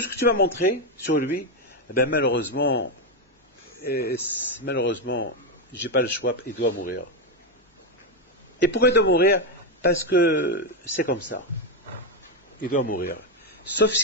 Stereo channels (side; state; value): both; normal; correlation 0.07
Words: ce que tu m'as montré sur lui, eh ben malheureusement, j'ai pas le choix, il doit mourir. Et pourquoi il doit mourir? Parce que c'est comme ça. Il doit mourir. Sauf